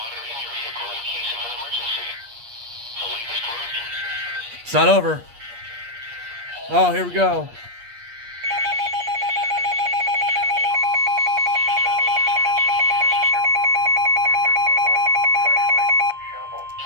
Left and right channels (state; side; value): late; left; 8.4 ms